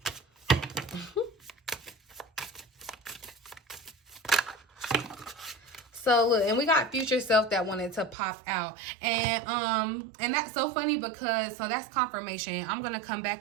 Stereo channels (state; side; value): drops out; left; at 8.2 s